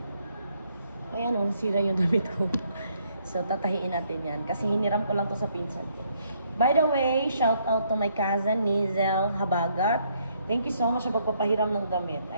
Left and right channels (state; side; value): inverted; both; correlation -0.70